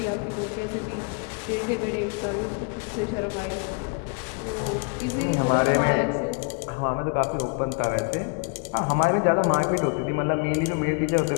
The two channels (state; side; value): quieter; right; 33.0 dB